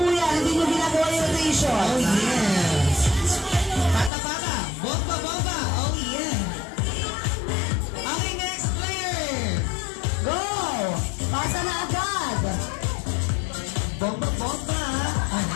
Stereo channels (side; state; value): right; drops out; at 4.1 s